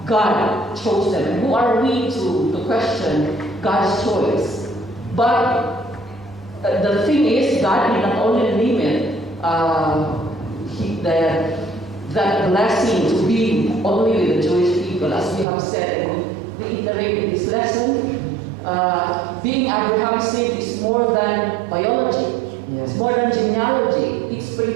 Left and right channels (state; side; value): drops out; left; at 15.5 s